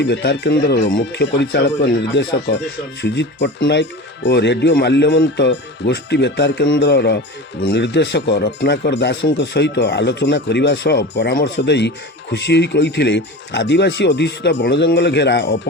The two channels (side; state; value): both; normal; correlation 0.31